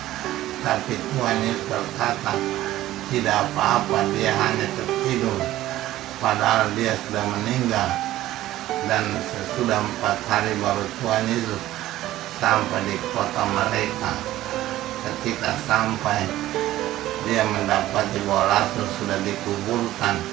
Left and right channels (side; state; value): left; quieter; 14.9 dB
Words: Tapi Tuhan Yesus berkata, tidak apa-apa, dia hanya tertidur, padahal dia sudah meninggal. Dan sesudah 4 hari baru Tuhan Yesus sampai di kota mereka. Ketika sampai, dia mendapati bahwa Lazarus sudah dikuburkan,